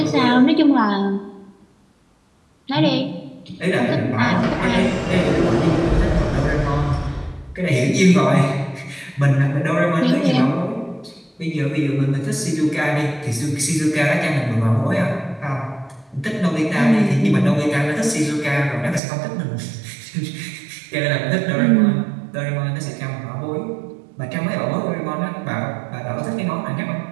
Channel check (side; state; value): left; drops out; at 19.0 s